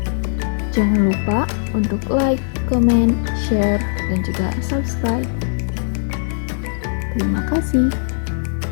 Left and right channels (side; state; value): right; silent; digital silence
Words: Jangan lupa untuk like, comment, share, dan juga subscribe. Terima kasih.